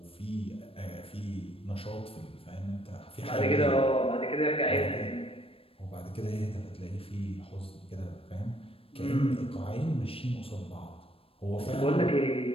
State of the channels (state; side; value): late; right; 0.27 ms